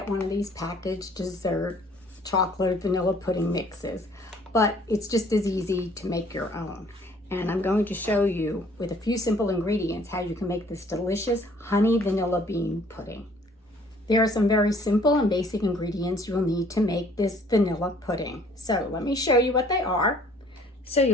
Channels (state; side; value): normal; both; correlation 0.58